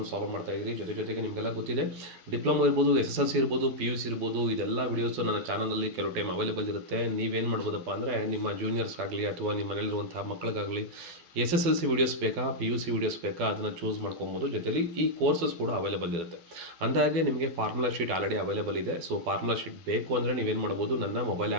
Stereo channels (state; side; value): late; left; 12 ms